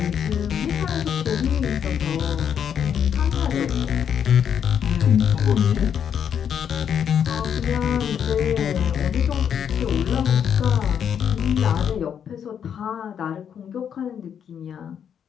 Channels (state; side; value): quieter; right; 8.3 dB